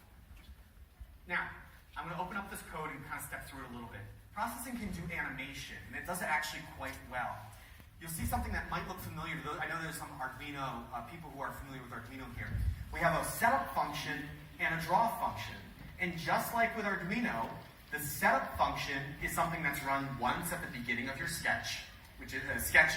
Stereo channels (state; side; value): identical; both; correlation 1.00